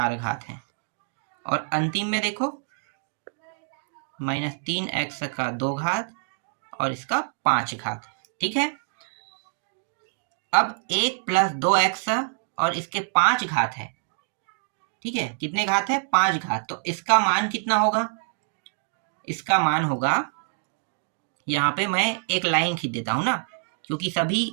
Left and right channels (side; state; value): left; silent; digital silence